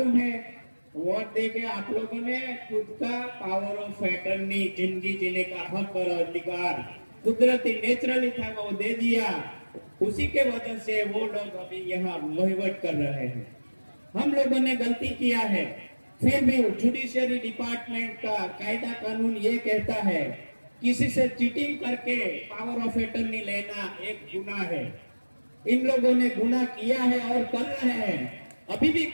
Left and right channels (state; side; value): inverted; both; correlation -1.00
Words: है? वोट देके आप लोगों ने खुद का पावर ऑफ अटर्नी, जिंदगी जीने का हक और अधिकार कुदरती नेचुरली था वो दे दिया। उसी के वजह से वो लोग अभी यहाँ वहीवट कर रहे हैं। हम लोगों ने गलती किया है, फिर भी जुडिशियरी डिपार्टमेंट का कायदा कानून ये कहता है किसी से चीटिंग करके पावर ऑफ अटर्नी लेना एक गुनाह है। इन लोगों ने गुनाह किया है और कर रहे हैं, अभी भी